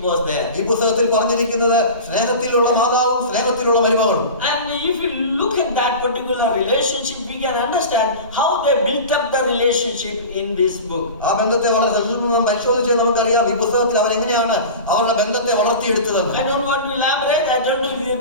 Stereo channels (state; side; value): inverted; both; correlation -0.32